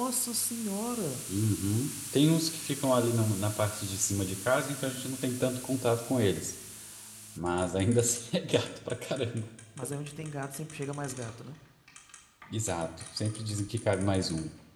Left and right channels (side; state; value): both; identical; correlation 1.00